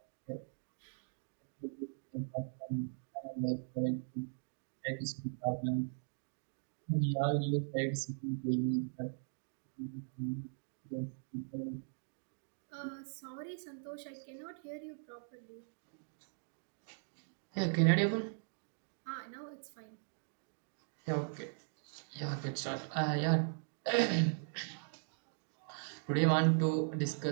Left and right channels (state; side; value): silent; left; digital silence